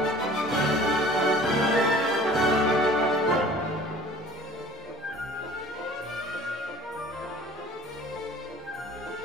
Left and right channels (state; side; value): normal; both; correlation 0.47